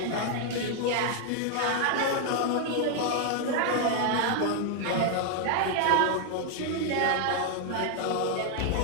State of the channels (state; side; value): different; both; correlation 0.00